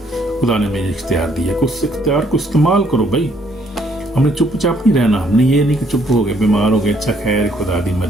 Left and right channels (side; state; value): both; normal; correlation 0.67